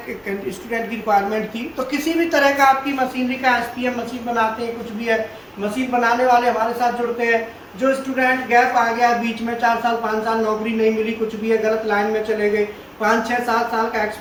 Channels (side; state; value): both; identical; correlation 1.00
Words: की रिक्वायरमेंट थी। तो किसी भी तरह का आपकी मशीनरी का SPM मशीन बनाते हैं, कुछ भी है, मशीन बनाने वाले हमारे साथ जुड़ते हैं। जो स्टूडेंट गैप आ गया बीच में, 4 साल 5 साल नौकरी नहीं मिली, कुछ भी है, गलत लाइन में चले गए, 5 6 7 साल का